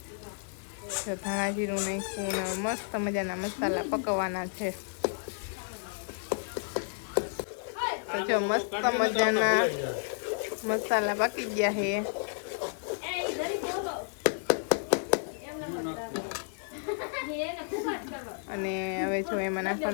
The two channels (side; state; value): right; silent; digital silence